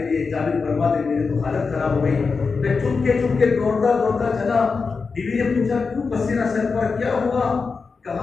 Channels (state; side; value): quieter; right; 4.8 dB